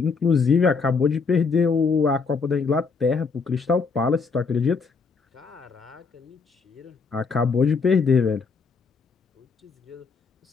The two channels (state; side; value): quieter; right; 4.9 dB